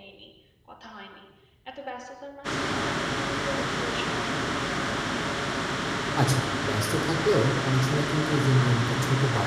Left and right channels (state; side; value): identical; both; correlation 1.00